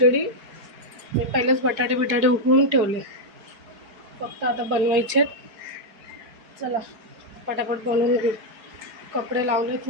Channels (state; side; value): late; left; 4.7 ms